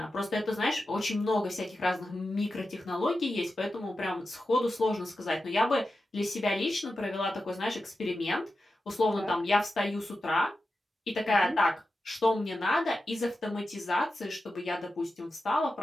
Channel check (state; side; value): normal; both; correlation 0.92